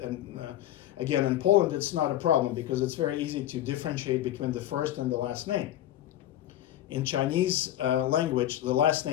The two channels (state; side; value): quieter; right; 13.0 dB